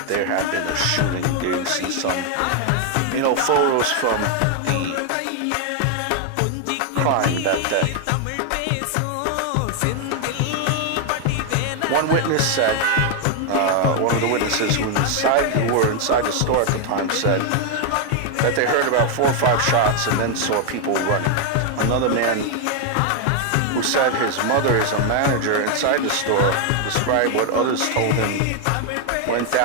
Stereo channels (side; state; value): both; different; correlation 0.00